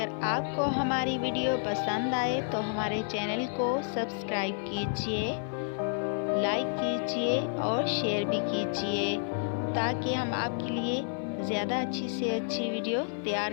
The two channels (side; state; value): right; silent; 58 dB below the other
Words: आपको हमारी वीडियो पसंद आए तो हमारे चैनल को सब्सक्राइब कीजिए, लाइक कीजिए और शेयर भी कीजिए ताकि हम आपके लिए ज़्यादा अच्छी से अच्छी वीडियो तैयार